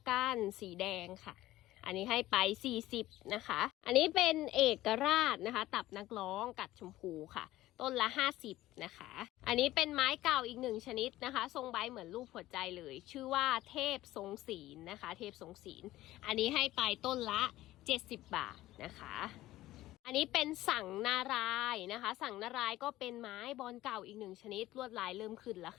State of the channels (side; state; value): right; quieter; 15.9 dB